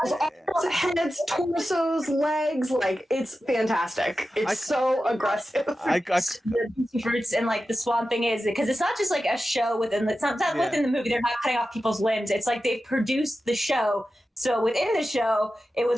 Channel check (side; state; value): both; normal; correlation 0.93